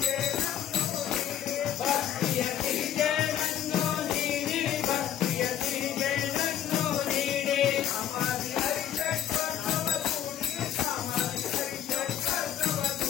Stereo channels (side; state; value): right; quieter; 10.5 dB